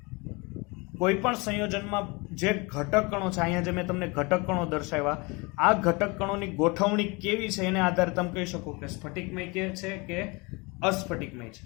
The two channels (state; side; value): quieter; right; 27.4 dB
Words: કોઈ પણ સંયોજનમાં જે ઘટક કણો છે, અહીંયા જે મેં તમને ઘટક કણો દર્શાવ્યા, આ ઘટક કણોની ગોઠવણી કેવી છે એને આધારે તમે કહી શકો કે સ્ફટિકમય કે છે કે અસ્ફટિકમય છે.